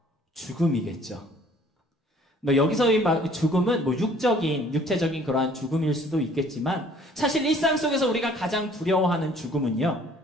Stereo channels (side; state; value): both; normal; correlation 0.56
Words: 죽음이겠죠. 여기서의 죽음은 육체적인 그러한 죽음일 수도 있겠지만, 사실 일상 속에서 우리가 가장 두려워하는 죽음은요,